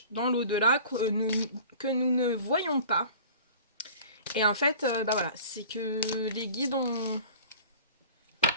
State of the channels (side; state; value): both; inverted; correlation -0.43